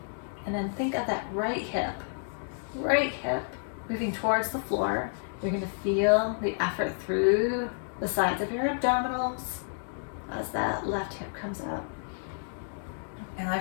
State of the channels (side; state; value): right; silent; digital silence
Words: and then think of that right hip moving towards the floor. You're going to feel the effort through the sides of your abdominals as that left hip comes up. And I